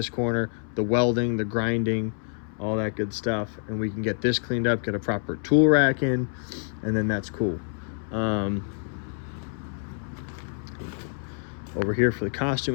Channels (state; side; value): silent; right; 60 dB below the other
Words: corner, the welding, the grinding, all that good stuff, and we can get this cleaned up, get a proper tool rack in, and then that's cool. Over here for the